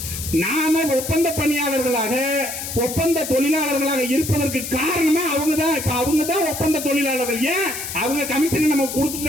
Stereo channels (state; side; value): noise; left; hiss, 7 dB below the sound